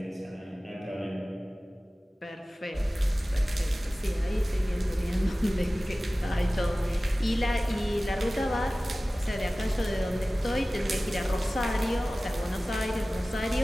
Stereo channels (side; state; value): both; normal; correlation 0.97